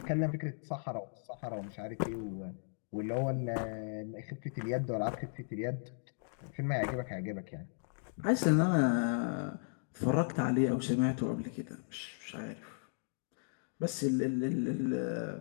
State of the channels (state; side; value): silent; right; digital silence